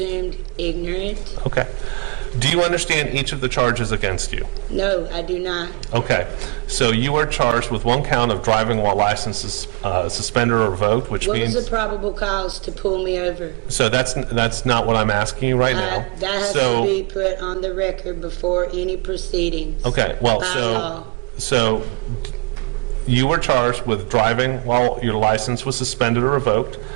ignorant. Okay. Do you understand each of the charges against you? No, I do not. Okay. So you are charged with one count of driving while license is suspended or revoked, which means... What was the probable cause to pull me over? So that's not what I'm asking you right now. That has to be put on the record before any proceedings. Okay, well, by law. So you were charged with driving while your license was suspended or revoked.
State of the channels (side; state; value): left; quieter; 32.5 dB